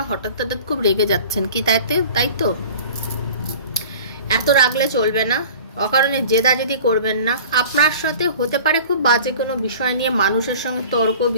হঠাৎ খুব রেগে যাচ্ছেন, কি তাই তো এত রাগলে চলবে না, অকারণে জেদাজেদি করবেন না। আপনার সাথে হতে পারে খুব বাজে কোনো বিষয় নিয়ে মানুষের সঙ্গে তর্ক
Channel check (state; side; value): inverted; both; correlation -0.42